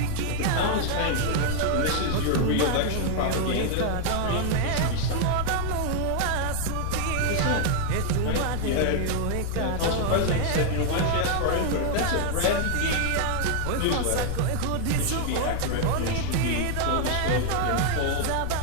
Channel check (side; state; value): both; different; correlation 0.00